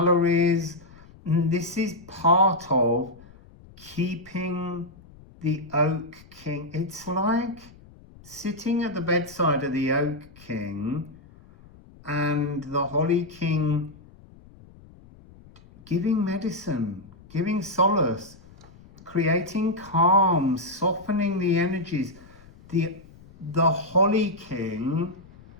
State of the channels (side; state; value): left; noise; rumble, 23 dB below the sound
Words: And this is part of keeping the Oak King. It's like sitting at the bedside of the Oak King and the Holly King giving medicine, giving solace, creating calm, softening the energies. The Holly King